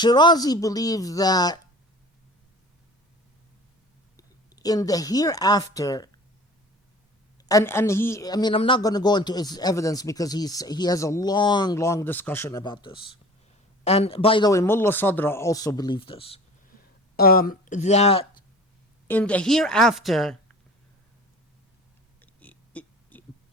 believed that in the hereafter, and I'm not going to go into his evidence because he has a long discussion about this. And by the way, Mullah Sadra also believed this, that in the hereafter,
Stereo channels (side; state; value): both; normal; correlation 0.42